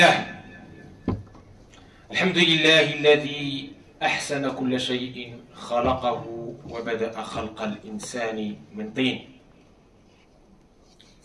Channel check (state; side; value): identical; both; correlation 1.00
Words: الحمد لله الذي أحسن كل شيء خلقه وبدأ خلق الإنسان من طين،